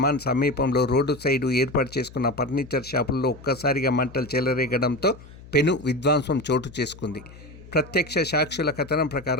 సమీపంలో రోడ్డు సైడు ఏర్పాటు చేసుకున్న ఫర్నిచర్ షాపుల్లో ఒక్కసారిగా మంటలు చెలరేగడంతో పెను విధ్వంసం చోటు చేసుకుంది. ప్రత్యక్ష సాక్షుల కథనం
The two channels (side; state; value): left; noise; hum, 19 dB below the sound